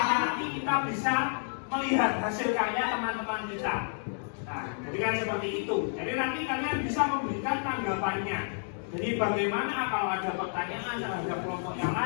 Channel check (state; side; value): silent; right; digital silence